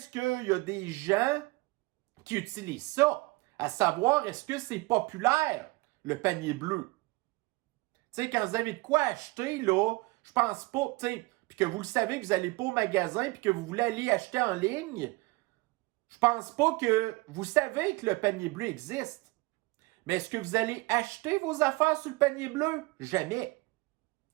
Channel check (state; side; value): quieter; left; 23.5 dB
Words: qu'il y a des gens qui utilisent ça. À savoir, est-ce que c'est populaire, le panier bleu? Tu sais, quand vous avez de quoi acheter, là, je pense pas, tu sais, puis que vous le savez que vous n'allez pas au magasin puis que vous voulez aller acheter en ligne, je pense pas que vous savez que le panier bleu existe. Mais est-ce que vous allez acheter vos affaires sur le panier bleu? Jamais.